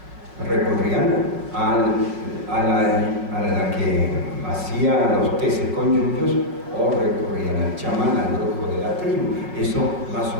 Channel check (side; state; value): left; late; 5.6 ms